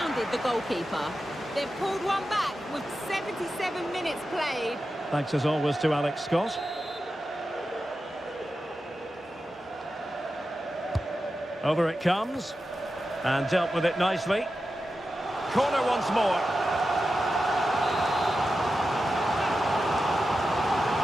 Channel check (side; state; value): both; normal; correlation 0.91